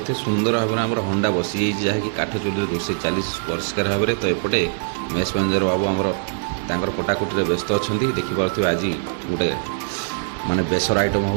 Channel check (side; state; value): left; silent; digital silence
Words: सुंदर भाव में आम हंडा बसी जहाँकि काठ चुली रोसे चली परिष्कार भाव में तो एपटे मेष मैनेजर बाबू आमर कटाकुटी व्यस्त अच्छा देखिपे आज गोटे माने बेसर आइटम